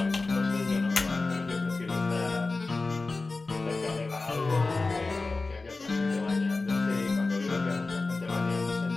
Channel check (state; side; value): quieter; right; 3.6 dB